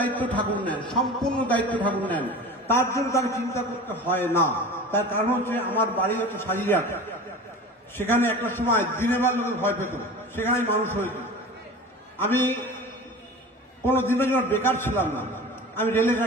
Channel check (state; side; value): normal; both; correlation 0.36